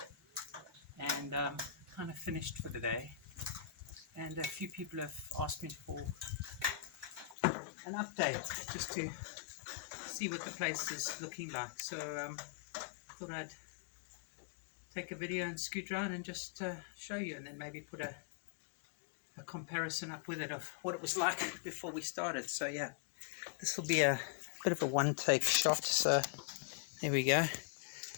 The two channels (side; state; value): right; drops out; at 7.4 s